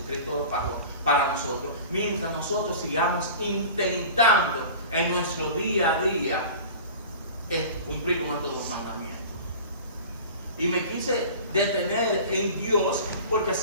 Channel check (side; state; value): both; inverted; correlation -0.39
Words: lo pagó para nosotros. Mientras nosotros sigamos intentando en nuestro día a día cumplir con estos dos mandamientos. Y me quise detener en Dios porque